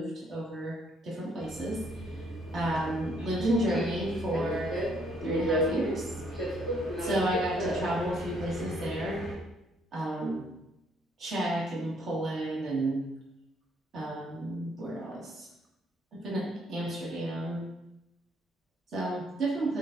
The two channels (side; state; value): both; normal; correlation 0.68